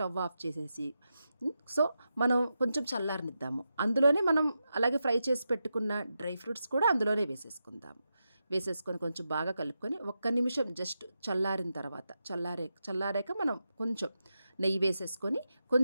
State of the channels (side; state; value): both; inverted; correlation -0.88